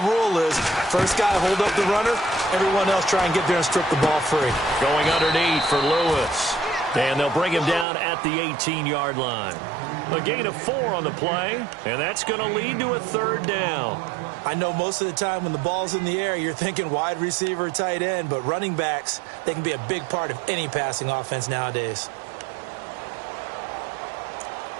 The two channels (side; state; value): left; drops out; at 7.9 s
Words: is. First guy hold up the runner. Everyone else try and get there and strip the ball free. Going underneath for Lewis. And they'll bring him down at the 18-yard line. A gain of 4 on the play, and that's going to lead to a third down. I know most of the time when the ball's in the air, you're thinking wide receiver, tight end, but running backs, they can be a big part of any passing offense nowadays.